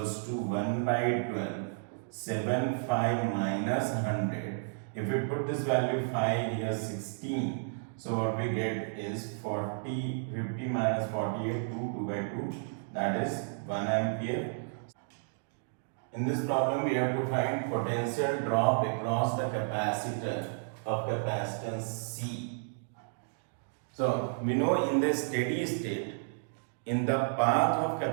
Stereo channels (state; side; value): silent; left; digital silence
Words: to 1 by 12 7 5 minus 100. If we put this value 5 here 16, so what we get is 50 minus 48 2 by 2, that is 1 ampere. In this problem we have to find potential drop across the capacitor of capacitance C. So we know in the steady state, in the path of